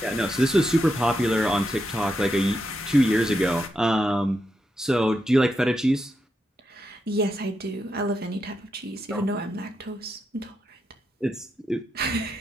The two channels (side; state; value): both; normal; correlation 0.84